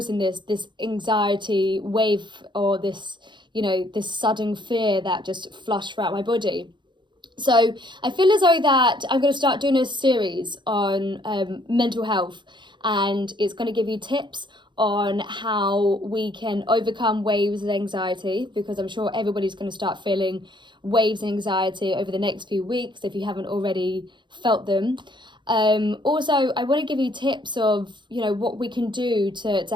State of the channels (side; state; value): left; late; 0.23 ms